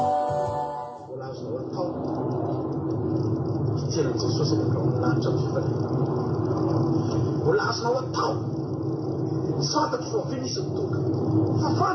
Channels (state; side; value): identical; both; correlation 1.00